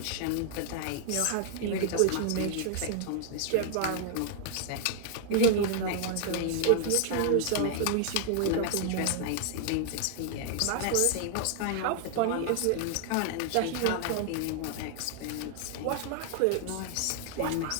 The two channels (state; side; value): different; both; correlation -0.01